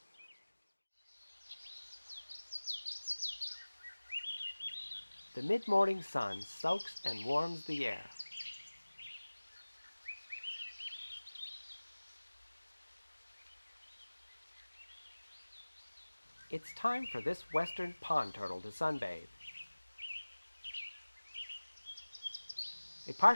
The mid-morning sun soaks and warms the air. It's time for this western pond turtle to sunbathe. A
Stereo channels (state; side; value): inverted; both; correlation -1.00